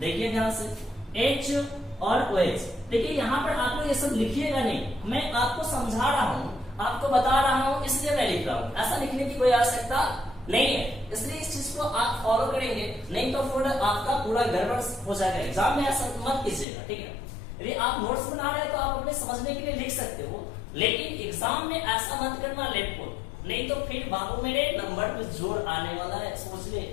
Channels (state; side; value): drops out; right; at 16.7 s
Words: ध्यान से, H और OH। देखिए यहां पर आप लोग ये सब लिखिएगा नहीं, मैं आपको समझा रहा हूं, आपको बता रहा हूं, इसलिए मैं लिख रहा हूं। ऐसा लिखने की कोई आवश्यकता नहीं है, इसलिए इस चीज को आप फॉलो करेंगे, नहीं तो फिर आपका पूरा गड़बड़ हो जाएगा। एग्जाम में ऐसा मत कीजिएगा, ठीक है। यदि आप नोट्स बना रहे हैं तो आप अपने समझने के लिए लिख सकते हो, लेकिन एग्जाम में ऐसा मत करना लेफ्ट को, नहीं तो फिर बाबू मेरे नंबर पे जोर आने वाला है, सोच ले।